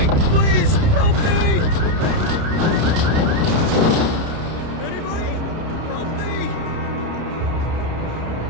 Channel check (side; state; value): left; late; 30 ms